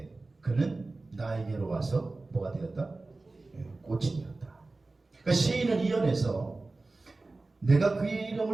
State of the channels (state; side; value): quieter; left; 3.3 dB